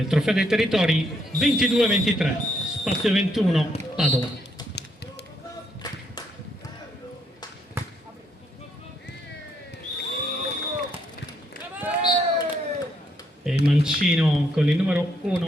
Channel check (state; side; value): normal; both; correlation 0.74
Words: Trofeo dei Territori 22-23, spazio 21, Padova. E il mancino con il numero